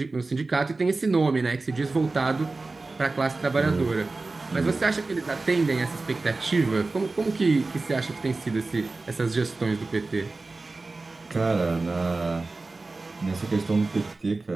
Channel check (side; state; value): left; quieter; 3.5 dB